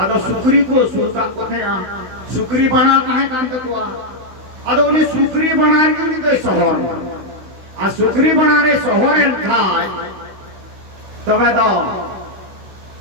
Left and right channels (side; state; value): left; late; 16 ms